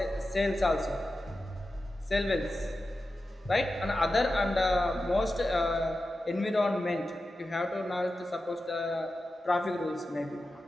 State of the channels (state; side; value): normal; both; correlation 0.92